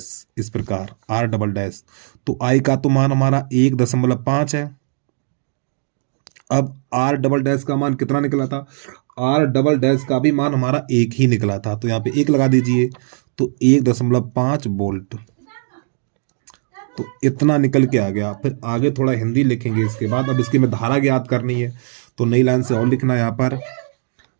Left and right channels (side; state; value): left; silent; digital silence